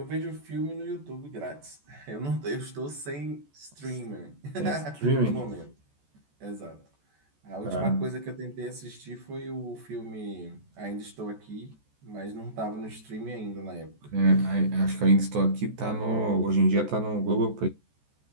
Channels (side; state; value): left; late; 14 ms